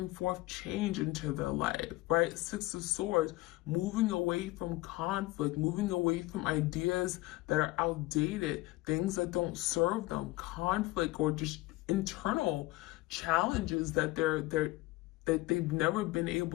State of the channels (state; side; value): quieter; right; 19.9 dB